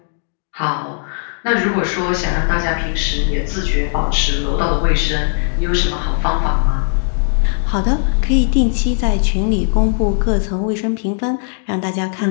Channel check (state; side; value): silent; right; 62 dB below the other